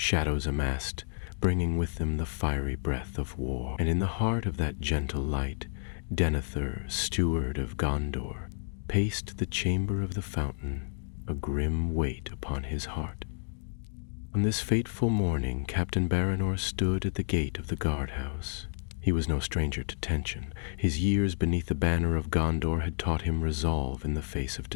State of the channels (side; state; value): right; silent; digital silence